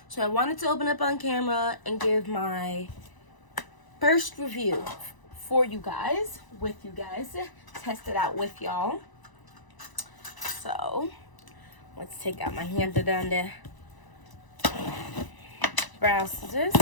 So I wanted to open up on camera and give my first review for you guys, test it out with y'all. So let's take out my handy dandy brow scissors.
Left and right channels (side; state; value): right; late; 1.0 ms